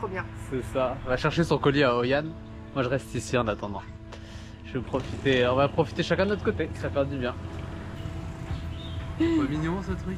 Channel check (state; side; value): identical; both; correlation 1.00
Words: bien. C'est ça. Elle va chercher son colis à Hoi An. Moi, je reste ici en attendant. Je vais profiter. On va profiter chacun de notre côté. Ça fait du bien. Pas mignon ce truc.